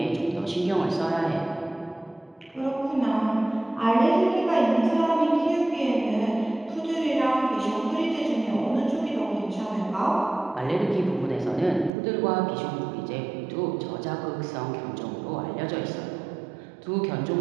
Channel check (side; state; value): left; drops out; at 11.9 s